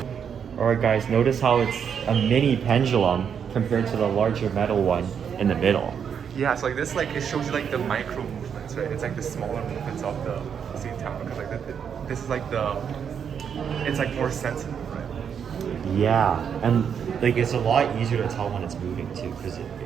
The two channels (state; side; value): quieter; left; 7.5 dB